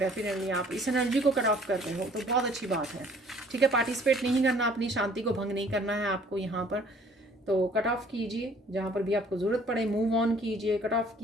आप इस एनर्जी को कट ऑफ कर रहे हो, तो बहुत अच्छी बात है, ठीक है। पार्टिसिपेट नहीं करना, अपनी शांति को भंग नहीं करना है आपको यहाँ पर, तो कट ऑफ कीजिए, जहाँ पर भी आपको ज़रूरत पड़े मूव ऑन कीजिए, कट ऑफ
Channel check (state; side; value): normal; both; correlation 0.56